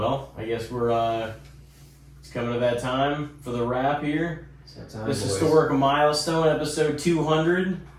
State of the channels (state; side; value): identical; both; correlation 1.00